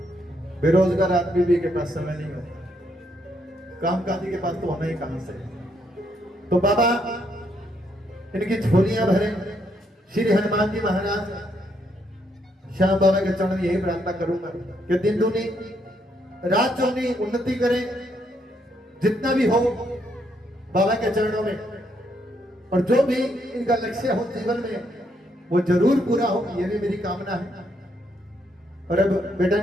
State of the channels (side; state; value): both; normal; correlation 0.75